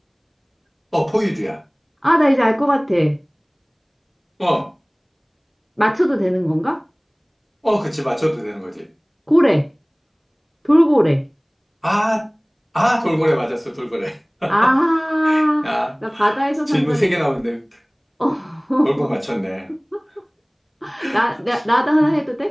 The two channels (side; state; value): both; identical; correlation 1.00